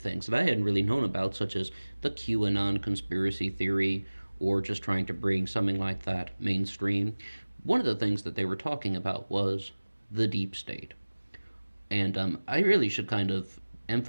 that I hadn't really known about, such as the QAnon conspiracy theory, or just trying to bring something like that mainstream. One of the things that they were talking about was the deep state. And I really should kind of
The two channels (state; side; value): inverted; both; correlation -1.00